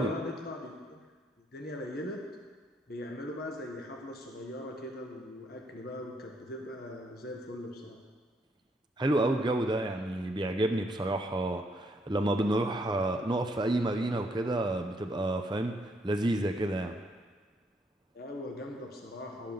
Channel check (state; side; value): normal; both; correlation 0.72